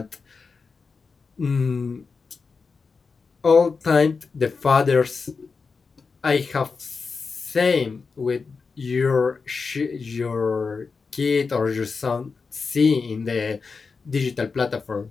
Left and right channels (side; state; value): right; quieter; 4.8 dB